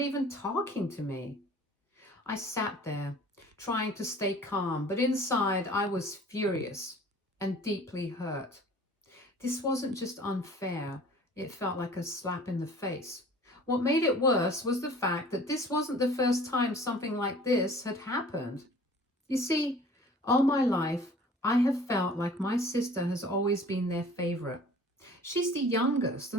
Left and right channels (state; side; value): normal; both; correlation 0.48